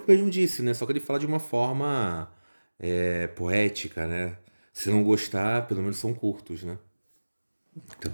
mesmo disse, né? Só que ele fala de uma forma poética, né? Se não gostar, pelo menos são curtos, né? Então,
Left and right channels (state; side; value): inverted; both; correlation -1.00